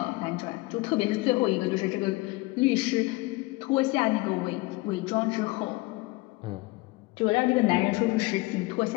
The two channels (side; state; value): right; quieter; 22.3 dB